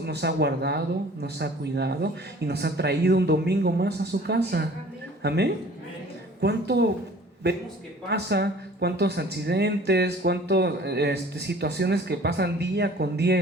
nos ha guardado, nos ha cuidado y nos ha traído un domingo más a su casa. Amén. ¿Cuánto vemos que pasa? ¿Cuántos accidentes? ¿Cuántas situaciones que pasan día con día?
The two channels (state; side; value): normal; both; correlation 0.49